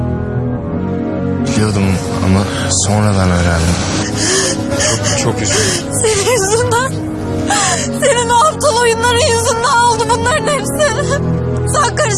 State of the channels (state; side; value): identical; both; correlation 1.00